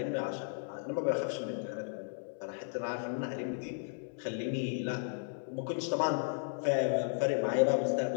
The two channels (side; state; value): right; silent; digital silence